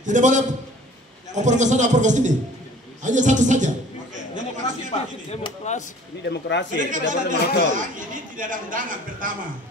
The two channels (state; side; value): normal; both; correlation 0.49